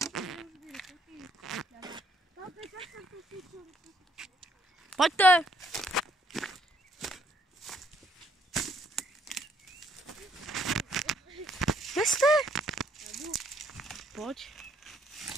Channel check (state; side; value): normal; both; correlation 0.68